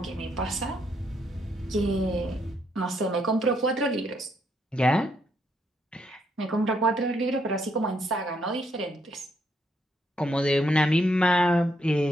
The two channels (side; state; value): both; normal; correlation 0.75